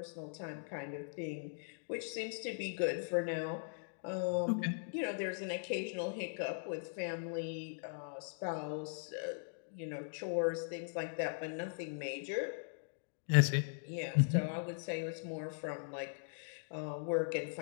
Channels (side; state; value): right; silent; digital silence